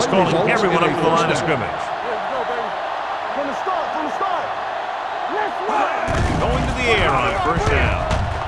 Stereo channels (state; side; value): identical; both; correlation 1.00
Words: calling everyone up to the line of scrimmage. From the start. Let's run. Going to the air on 1st down.